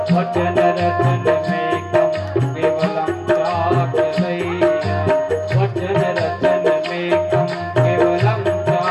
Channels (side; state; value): both; identical; correlation 1.00